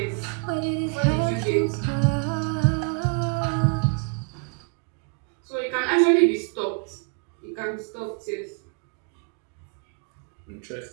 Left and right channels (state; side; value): quieter; left; 36.1 dB